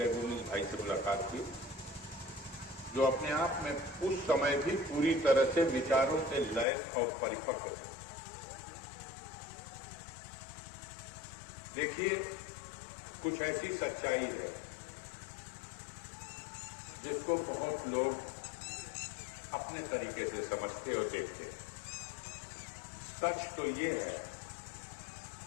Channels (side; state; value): right; drops out; at 6.7 s